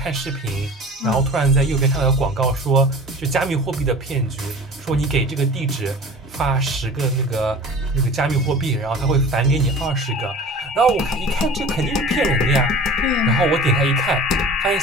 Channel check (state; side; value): normal; both; correlation 0.40